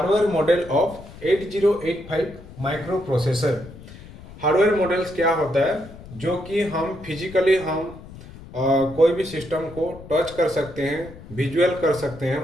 model of 8085 micro processor. Hardware models क्या होता है जो कि हम फिजिकली कोई भी सिस्टम को टच कर सकते हैं, विजुअल कर सकते हैं,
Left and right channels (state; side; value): noise; left; rumble, 17 dB below the sound